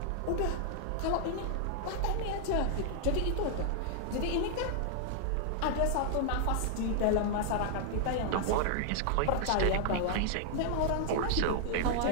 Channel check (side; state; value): both; different; correlation -0.01